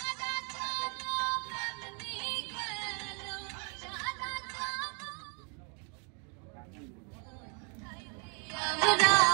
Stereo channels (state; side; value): quieter; left; 37.7 dB